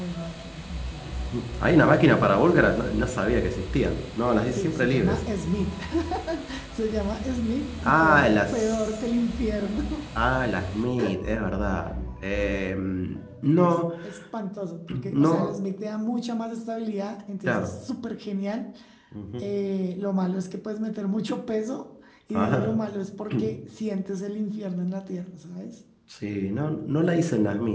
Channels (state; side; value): identical; both; correlation 1.00